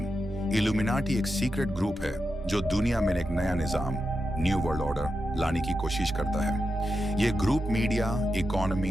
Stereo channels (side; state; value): both; normal; correlation 0.88